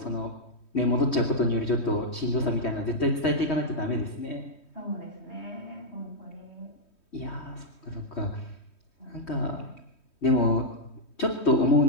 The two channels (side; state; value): right; late; 3.1 ms